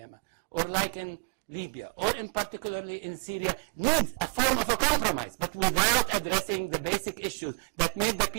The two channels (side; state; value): left; quieter; 37.1 dB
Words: or like in Libya, or in particularly in Syria, need a form of a compromise, but without addressing the basic issues that made the